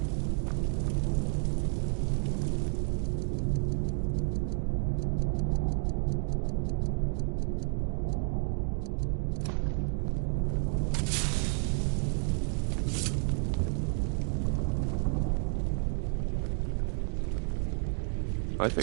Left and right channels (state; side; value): quieter; left; 40.0 dB